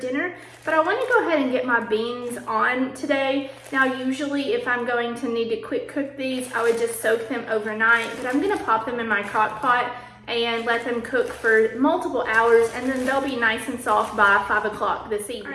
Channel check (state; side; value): identical; both; correlation 1.00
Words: But I wanna go ahead and get my beans on today. Now usually if I'm going to need to quick cook these, I would just soak them overnight, but I'm gonna pop them in my crock pot and let them cook for multiple hours, and then they'll be nice and soft by 5 o'clock this evening. All